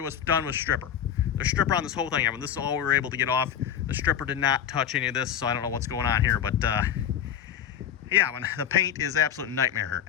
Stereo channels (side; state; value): right; quieter; 9.2 dB